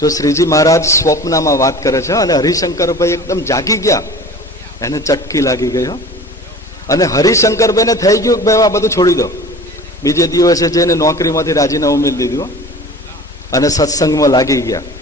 શ્રીજી મહારાજ સ્વપ્નમાં વાત કરે છે અને હરિશંકરભાઈ એકદમ જાગી ગયા, એને ચટકી લાગી ગઈ. અને હરિશંકરભાઈને થઈ ગયું કે ભાઈ આ બધું છોડી દો. બીજે દિવસે જઈને નોકરીમાંથી રાજીનામું મેળવી દીધું અને સત્સંગમાં લાગી ગયા.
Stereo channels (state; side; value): normal; both; correlation 0.40